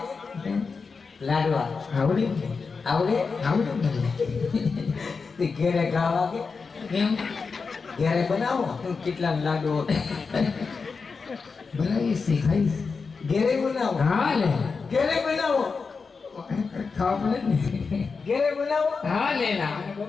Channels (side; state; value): right; quieter; 4.9 dB